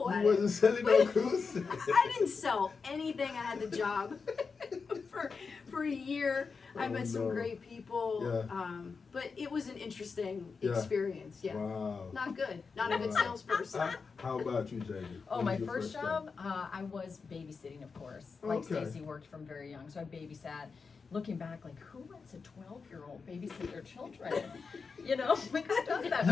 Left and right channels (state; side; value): quieter; right; 5.0 dB